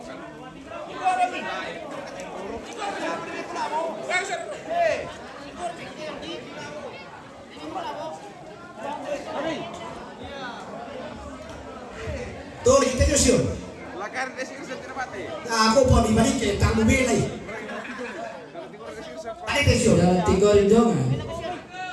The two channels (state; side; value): identical; both; correlation 1.00